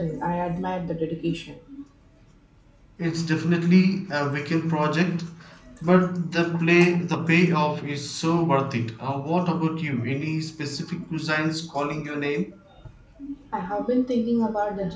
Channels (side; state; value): both; identical; correlation 1.00